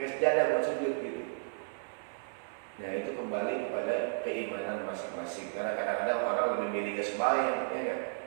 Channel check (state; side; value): silent; left; 56 dB below the other